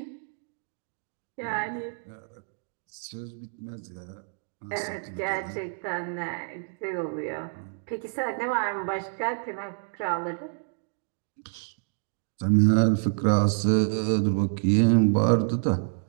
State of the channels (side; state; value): left; silent; 59 dB below the other